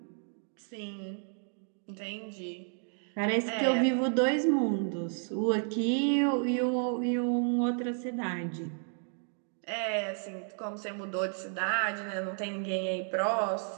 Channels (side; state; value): left; silent; 56 dB below the other